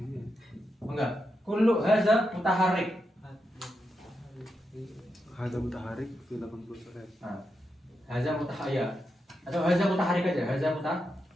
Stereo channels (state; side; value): normal; both; correlation 0.86